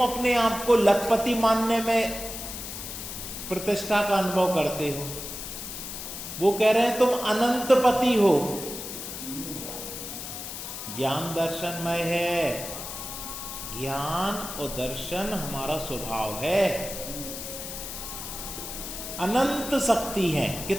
अपने आप को लखपति मानने में प्रतिष्ठा का अनुभव करते हो। वो कह रहे हैं तुम अनंत पति हो। ज्ञान दर्शनमय है। ज्ञान और दर्शन हमारा स्वभाव है। अनंत शक्ति है।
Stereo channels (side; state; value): left; noise; hiss, 8 dB below the sound